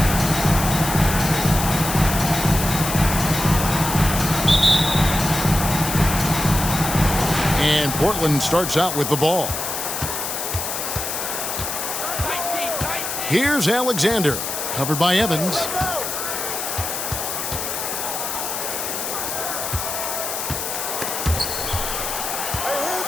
And Portland starts out with the ball. Here's Alexander, covered by Evans.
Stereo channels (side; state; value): left; noise; hiss, 4 dB below the sound